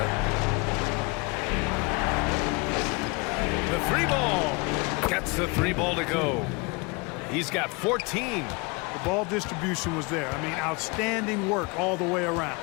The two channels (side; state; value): right; quieter; 28.3 dB